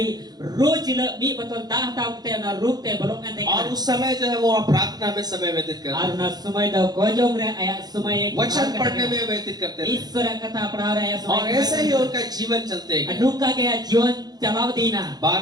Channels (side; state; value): left; late; 0.19 ms